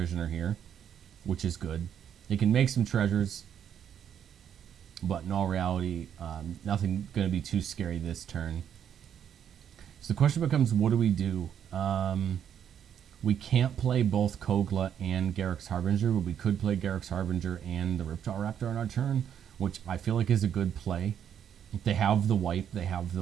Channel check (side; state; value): left; quieter; 8.9 dB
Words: here, which is good. They can make some treasures, but in all reality, nothing going to be too scary this turn. So the question becomes, what do we do? We can't play both Kogla and Garruk's Harbinger, but we could play Garruk's Harbinger and the Ripjaw Raptor on our turn, which I feel like is a good play. If they have the wipe, they have